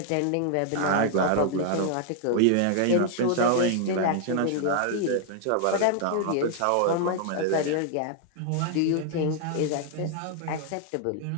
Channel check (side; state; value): both; different; correlation -0.01